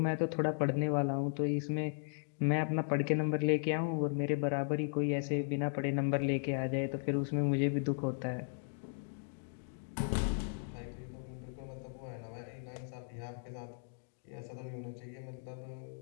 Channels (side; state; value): right; silent; digital silence